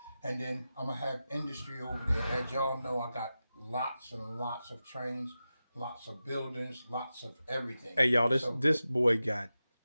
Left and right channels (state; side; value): inverted; both; correlation -0.93